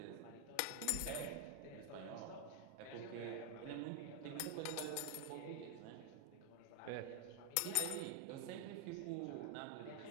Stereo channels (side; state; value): both; different; correlation 0.00